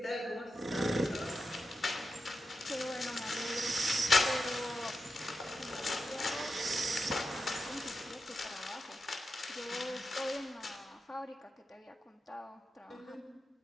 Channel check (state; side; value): normal; both; correlation 0.89